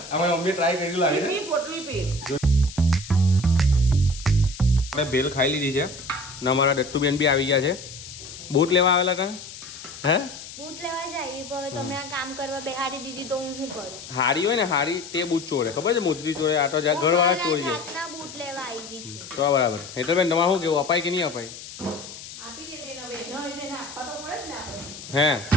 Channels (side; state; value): left; noise; hiss, 13 dB below the sound